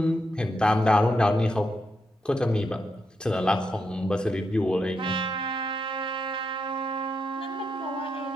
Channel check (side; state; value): both; normal; correlation 0.82